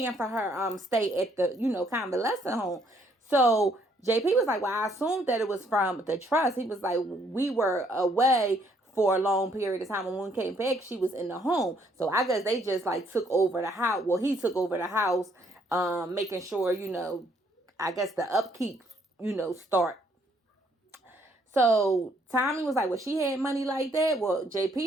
for her stay at the convalescent home? So JP was like, well, I assumed that it was from the trust. He was like, we were away for a long period of time, and when we came back, she was in the home. So I guess they just like took over the house. Well, he took over the house, making sure I guess the upkeep start. So Tommy was like, well, she had money like that. Well,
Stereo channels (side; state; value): both; normal; correlation 0.68